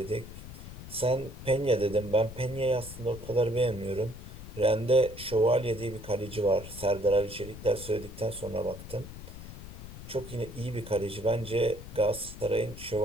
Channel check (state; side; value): noise; left; rumble, 13 dB below the sound